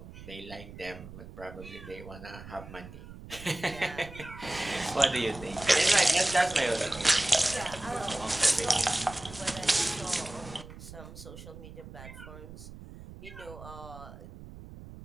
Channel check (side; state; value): right; noise; rumble, 15 dB below the sound